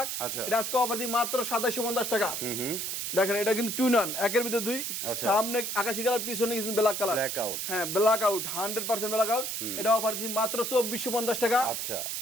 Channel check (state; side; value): noise; right; hiss, 3 dB below the sound